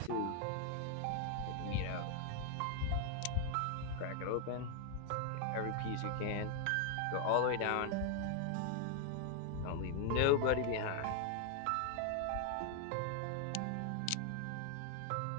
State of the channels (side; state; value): both; different; correlation 0.00